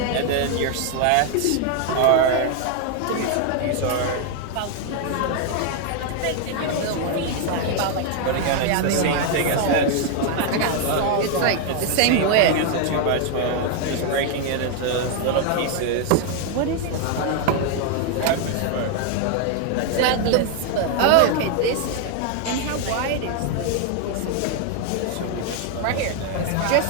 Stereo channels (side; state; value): both; different; correlation 0.00